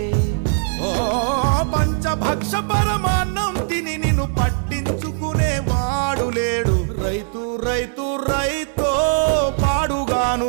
ఓ పంచభక్ష పరమాన్నం తిని నిన్ను పట్టించుకునే వాడు లేడు. రైతు రైతు రైతో పాడుగాను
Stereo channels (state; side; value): silent; left; digital silence